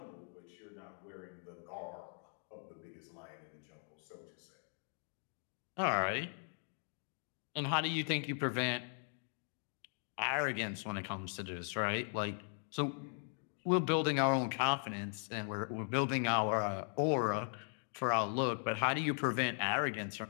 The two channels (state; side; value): silent; right; 52 dB below the other